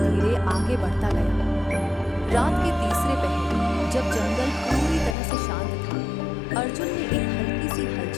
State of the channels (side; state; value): right; drops out; at 5.2 s